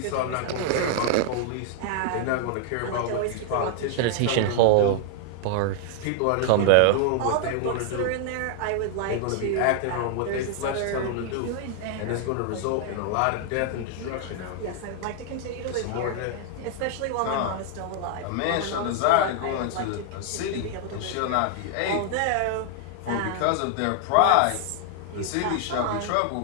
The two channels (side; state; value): both; different; correlation 0.00